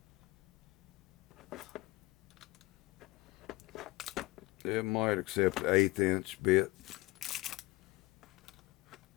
It might accept an 1/8 inch bit.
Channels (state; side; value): quieter; right; 21.2 dB